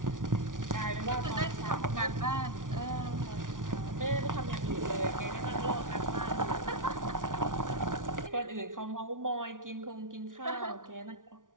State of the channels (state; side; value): late; left; 0.88 ms